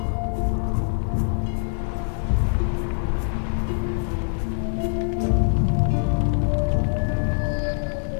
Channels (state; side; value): silent; right; 63 dB below the other